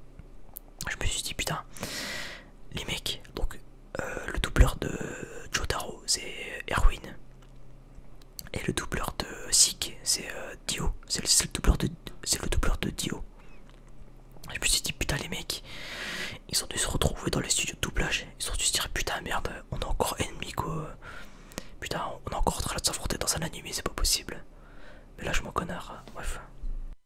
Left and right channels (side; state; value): both; identical; correlation 1.00